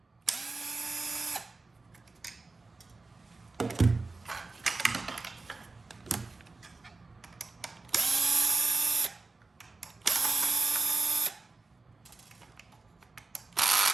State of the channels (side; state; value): left; quieter; 3.6 dB